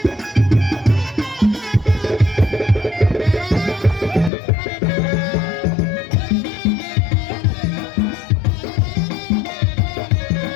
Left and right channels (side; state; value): right; drops out; at 4.3 s